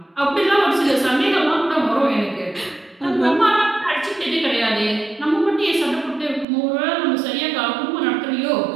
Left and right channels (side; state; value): left; drops out; at 6.5 s